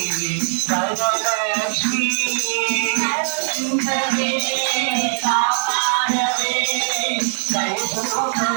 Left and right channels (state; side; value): silent; left; digital silence